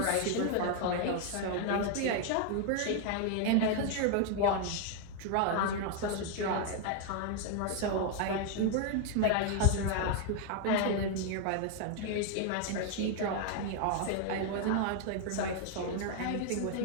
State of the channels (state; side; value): different; both; correlation 0.00